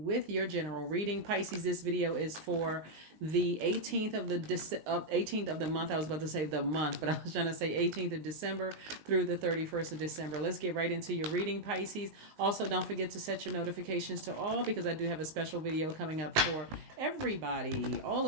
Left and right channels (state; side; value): late; left; 19 ms